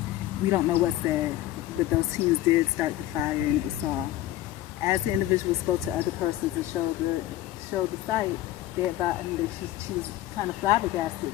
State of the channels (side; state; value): right; quieter; 14.5 dB